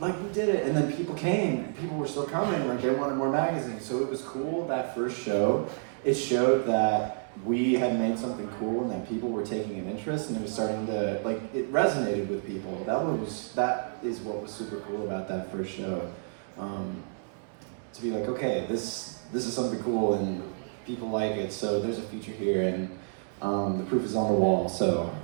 We did it, and then people came. People were still coming, they wanted more magazines. So it was cool, that first show. It showed that we had made something cool and that people were taking an interest, and it was starting to, it resonated with people. That is what was super cool about that first show. To be okay, this is something cool and people like it, so there's a future here, and the proof is on the wall, so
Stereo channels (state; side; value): silent; left; digital silence